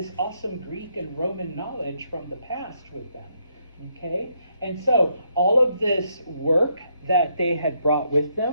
awesome Greek and Roman knowledge from the past with them. Okay, and so all of this work that they had brought with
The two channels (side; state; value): both; inverted; correlation -0.75